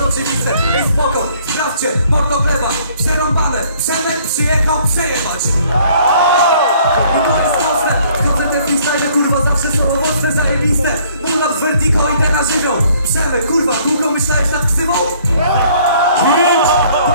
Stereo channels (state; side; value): inverted; both; correlation -0.60